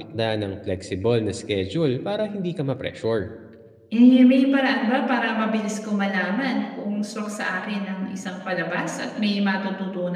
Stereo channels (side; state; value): both; identical; correlation 1.00